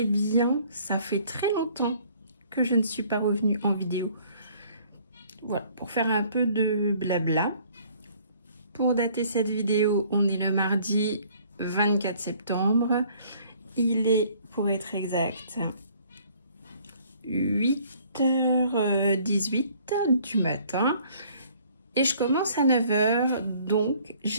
bien. Ça fait très longtemps que je ne suis pas revenue en vidéo. Voilà, pour faire un peu de blabla. Pour dater cette vidéo, on est le mardi 24 septembre. Il est, pour être exact, 8h18 du matin. Et je commence à 9h, donc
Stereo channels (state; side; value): inverted; both; correlation -0.58